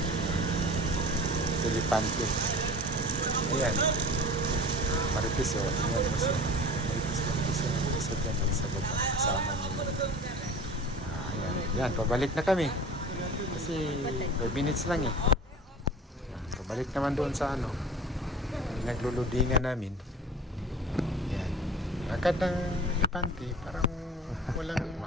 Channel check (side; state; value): both; normal; correlation 0.39